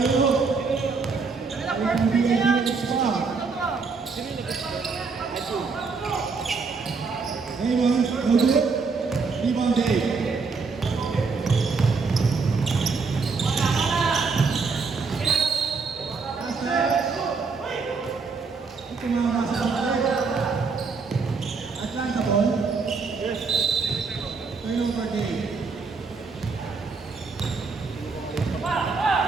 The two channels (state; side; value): quieter; left; 4.7 dB